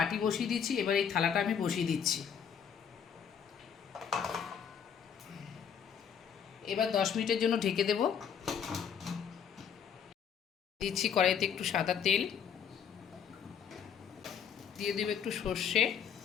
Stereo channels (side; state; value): right; quieter; 7.7 dB